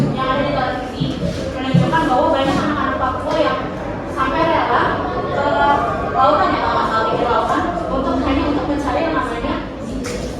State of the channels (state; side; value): identical; both; correlation 1.00